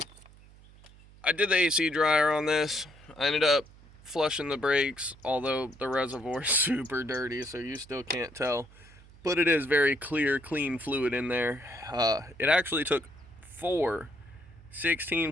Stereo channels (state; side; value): noise; right; hum, 23 dB below the sound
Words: I did the AC dryer on this. I ended up flushing the brakes, although the reservoir is super dirty, so you still can't tell. But it is very clear, clean fluid in there. It actually took 4